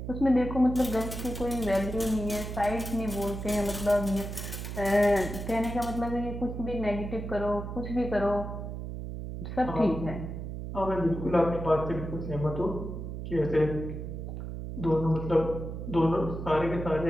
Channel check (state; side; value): noise; right; hum, 7 dB below the sound